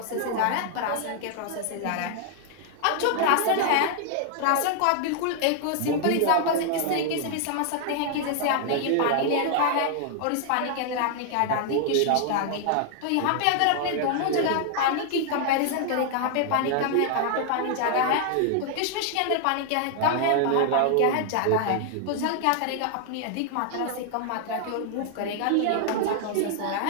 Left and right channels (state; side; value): different; both; correlation 0.00